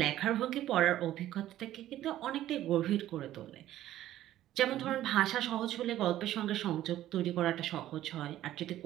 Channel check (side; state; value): left; quieter; 13.4 dB